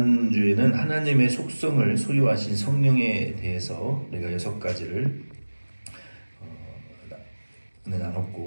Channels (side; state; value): both; inverted; correlation -1.00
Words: 하나님의 속성을 소유하신 성령에 대해서 우리가 6가지를